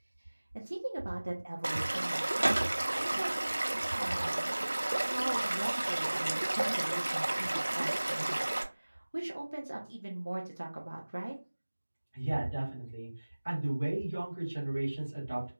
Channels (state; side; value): inverted; both; correlation -1.00